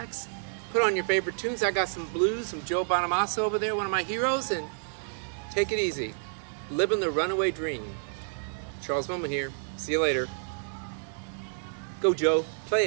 put on your favorite tunes. I got some blues, some Joe Bonamassa over there, one of my heroes, and take it easy. Living the runaway dream. Charles Moman here. See you later. Go, Joe. Play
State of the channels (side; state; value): left; silent; 58 dB below the other